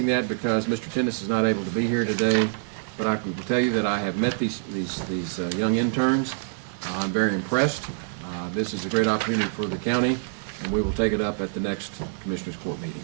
that because Mr. Tennis is not able to be here today, but I can tell you that I have met these young interns. I'm very impressed. This is a great opportunity for the county, and we will take it up at the next Commissioners Court meeting.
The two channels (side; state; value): left; silent; 61 dB below the other